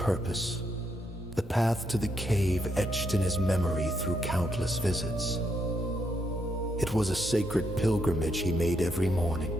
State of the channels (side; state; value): both; normal; correlation 0.77